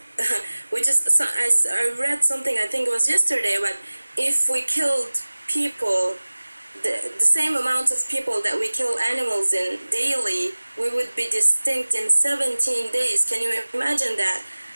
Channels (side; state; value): both; inverted; correlation -1.00